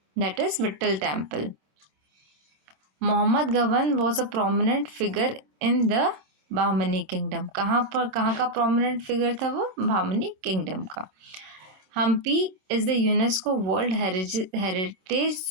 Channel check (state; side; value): late; left; 27 ms